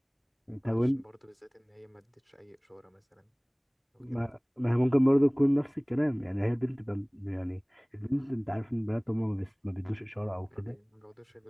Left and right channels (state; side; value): identical; both; correlation 1.00